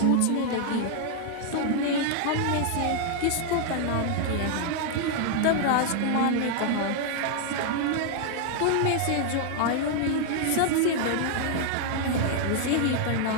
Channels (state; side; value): different; both; correlation 0.00